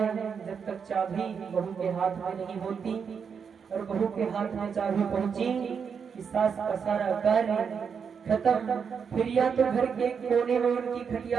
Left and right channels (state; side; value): quieter; left; 6.5 dB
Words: जब तक चाबी बहू के हाथ में नहीं होती। और बहू के हाथ में चाबी पहुंची कि सास का सारा कार्य खत्म। फिर या तो घर के कोने में उनकी